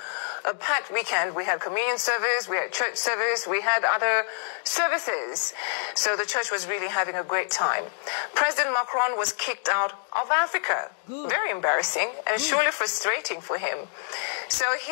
packed weekend. We had communion service, we had church service, we had other services. So the church was really having a great time. President Macron was kicked out of Africa. Good. Very embarrassing and surely frustrating for him. So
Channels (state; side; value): silent; right; digital silence